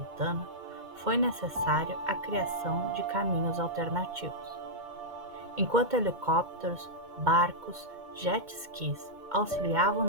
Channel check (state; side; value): late; left; 2.2 ms